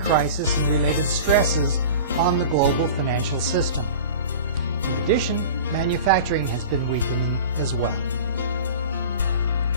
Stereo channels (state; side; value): inverted; both; correlation -0.36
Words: and related stresses on the global financial system. In addition, manufacturing has been weakening as well.